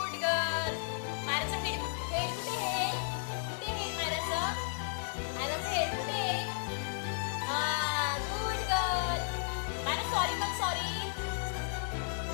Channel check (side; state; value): right; silent; digital silence